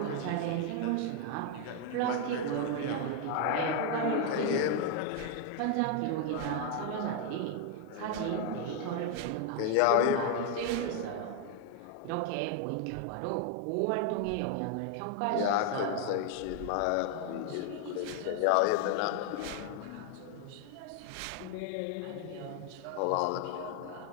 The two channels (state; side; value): different; both; correlation 0.00